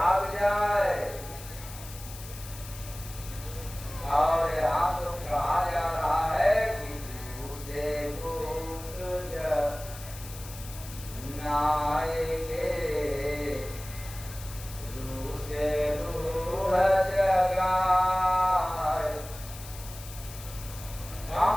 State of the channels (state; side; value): noise; left; hiss, 14 dB below the sound